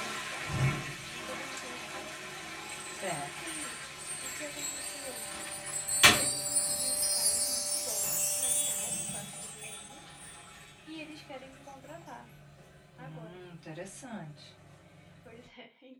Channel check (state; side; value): identical; both; correlation 1.00